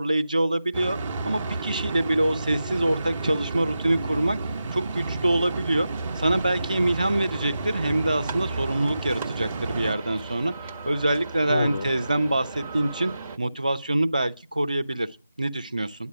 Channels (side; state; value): both; inverted; correlation -0.90